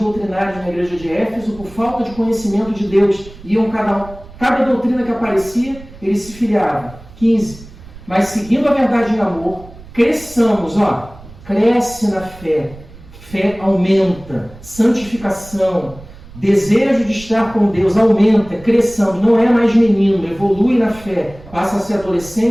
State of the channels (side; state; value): right; noise; rumble, 19 dB below the sound